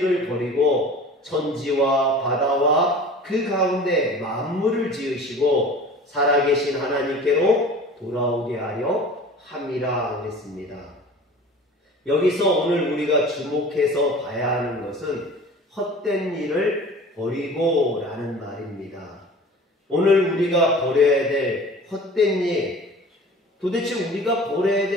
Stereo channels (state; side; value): normal; both; correlation 0.42